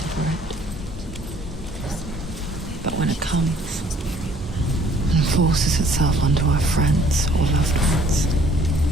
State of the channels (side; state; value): both; normal; correlation 0.59